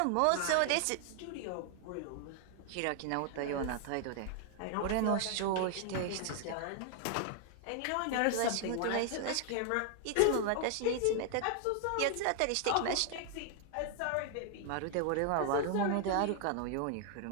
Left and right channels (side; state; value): both; different; correlation 0.00